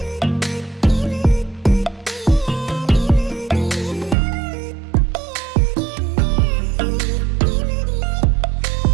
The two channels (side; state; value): left; drops out; at 4.2 s